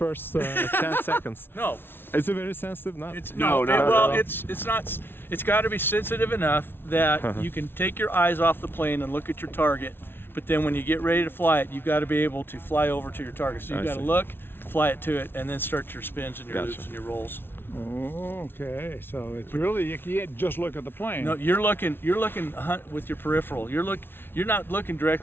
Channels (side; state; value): right; late; 0.11 ms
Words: 10 seconds. No. Is it very sensitive? Not. It's No, not at well, all. it's not. It's got to be sensitive enough that you can take your eyes off the plane and look at your target. But then when you get ready to fly it, you've got to be able to fly over to your target. So you've I got to see. look, fly it to it, and then start your spins and your Gotcha. loops and your rolls. Oh, okay. So it's really you can't just look at the plane. No, you're looking with your peripheral. You're not looking